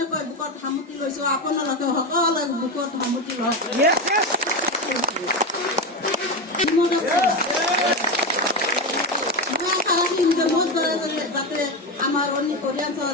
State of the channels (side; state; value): both; normal; correlation 0.15